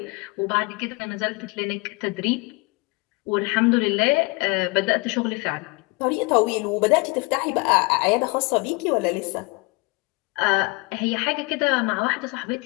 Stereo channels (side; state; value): right; quieter; 27.1 dB